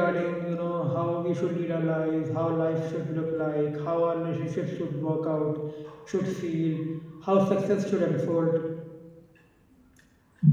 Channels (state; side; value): identical; both; correlation 1.00